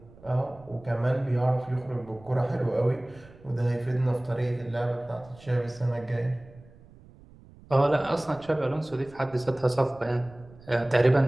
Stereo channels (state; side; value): noise; right; rumble, 23 dB below the sound